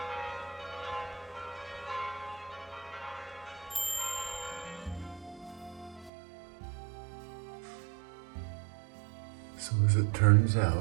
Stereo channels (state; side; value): drops out; left; at 6.1 s